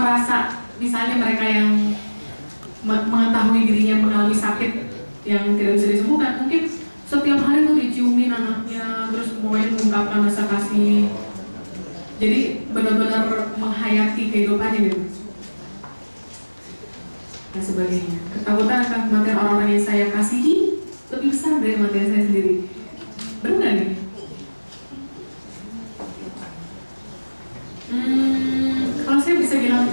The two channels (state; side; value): inverted; both; correlation -1.00